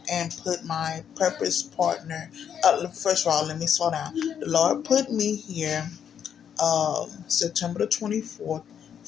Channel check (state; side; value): quieter; right; 8.4 dB